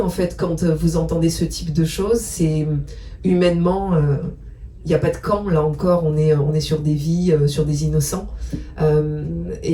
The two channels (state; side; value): identical; both; correlation 1.00